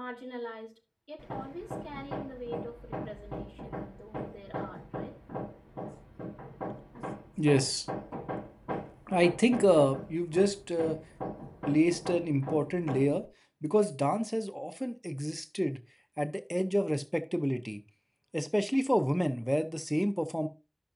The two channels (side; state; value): both; identical; correlation 1.00